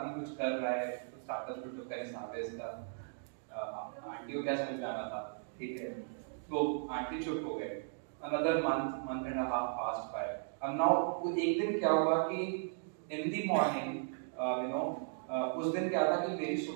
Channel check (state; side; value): silent; left; digital silence